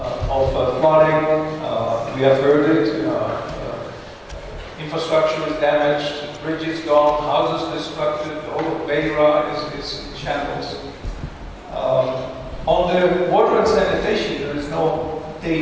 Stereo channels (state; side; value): identical; both; correlation 1.00